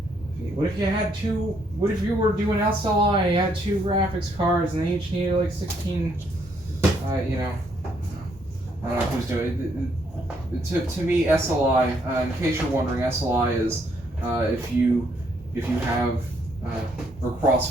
What if you had two? What if you were doing SLI and you had two graphics cards and they each needed like 16? You know, I don't know who's doing it. To me, SLI. In case you're wondering, SLI is if you have or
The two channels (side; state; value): both; normal; correlation 0.71